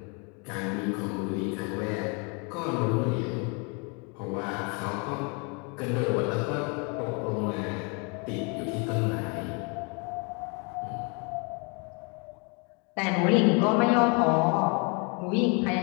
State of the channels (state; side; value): quieter; right; 33.4 dB